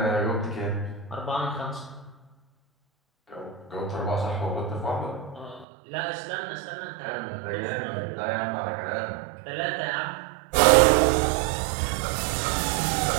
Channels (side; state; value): left; drops out; at 5.7 s